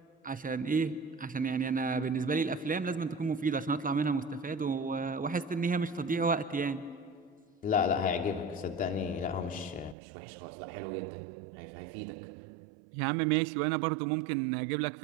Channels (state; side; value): drops out; left; at 10.0 s